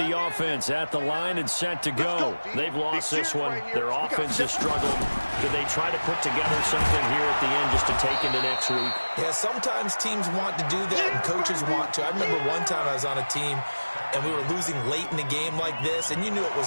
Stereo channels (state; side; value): inverted; both; correlation -1.00